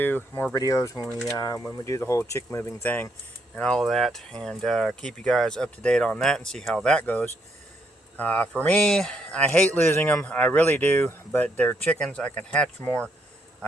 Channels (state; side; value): normal; both; correlation 0.74